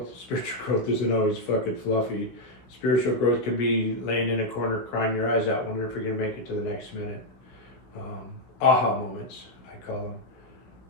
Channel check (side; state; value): right; late; 16 ms